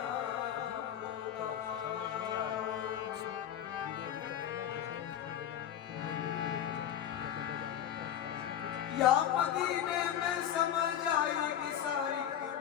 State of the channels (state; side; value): quieter; right; 10.2 dB